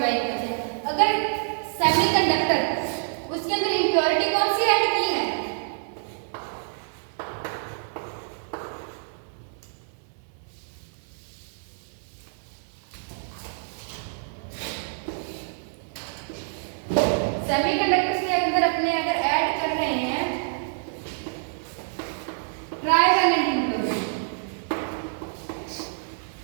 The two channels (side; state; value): left; silent; 60 dB below the other